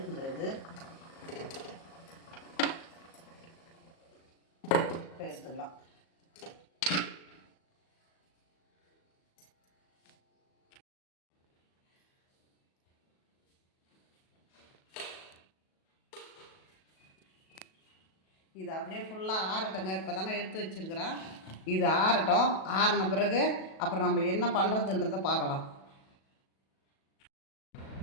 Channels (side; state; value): right; late; 37 ms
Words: இது. இப்போ எடுத்துக்கலாம். இது அப்படியே ஃபுல்லாக ஆறட்டுங்க. இப்போ தாங்க எடுத்து வச்சுருக்கிறேன். இது ஆறட்டும். ஆறின பிறகு அப்புறம் நம்ம என்ன பண்ணுறதுன்றதை பார்க்கலாம்.